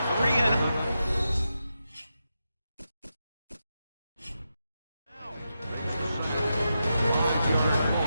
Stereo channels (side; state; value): both; inverted; correlation -0.87